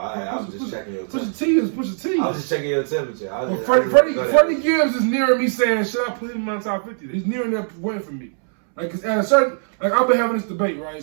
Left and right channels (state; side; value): silent; left; 65 dB below the other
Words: was just checking your temperature. Pusha T is Pusha T. I was just checking your temperature. Freddie Gibbs is nearing me saying, should I put him in my top 50? He's nearing that point for me. Like, at a certain, like, I've been having this debate, right?